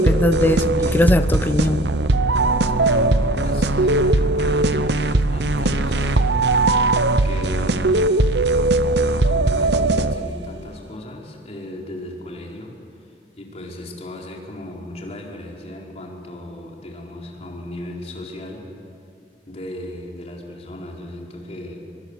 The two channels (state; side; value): normal; both; correlation 0.41